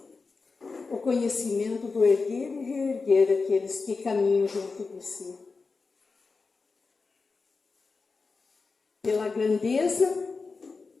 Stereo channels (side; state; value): right; quieter; 4.3 dB